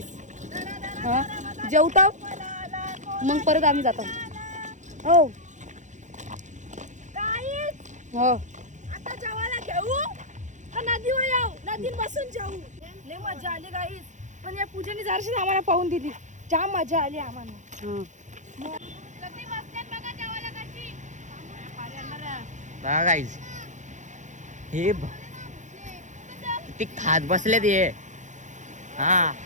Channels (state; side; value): late; left; 0.35 ms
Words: हा जेवता मग परत आम्ही जातो हो हो आता जेवायला घेऊ का नदीवर जाऊ नदीत बसून जाऊ लय मजा आली गाईस पण या पूजेने जराशी आम्हाला पाहून दिली जाम मजा आली आम्हाला हा. बघा गाईज हे किती खात बसले ते हा